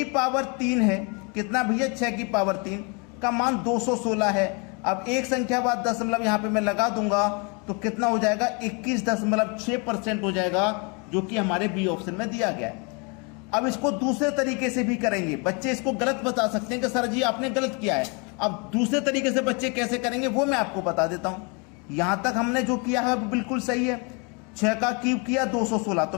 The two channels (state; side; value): quieter; right; 32.8 dB